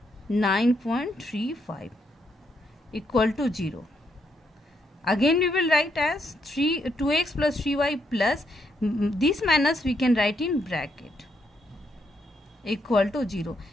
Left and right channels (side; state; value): both; normal; correlation 0.77